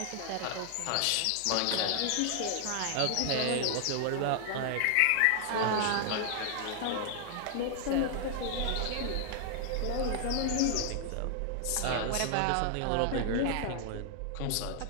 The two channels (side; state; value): both; different; correlation 0.00